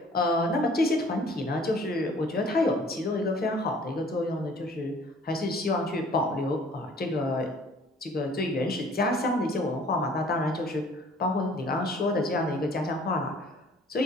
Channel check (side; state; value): both; normal; correlation 0.54